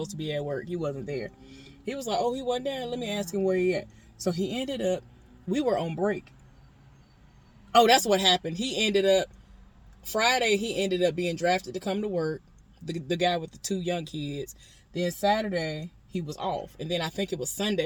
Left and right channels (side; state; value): both; identical; correlation 1.00